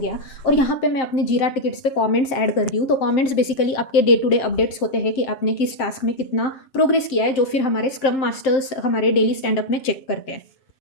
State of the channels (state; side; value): late; right; 7.6 ms